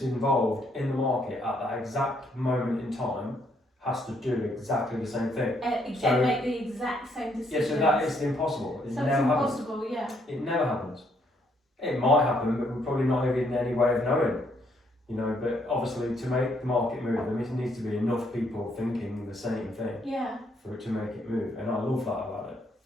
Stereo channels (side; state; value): both; normal; correlation 0.71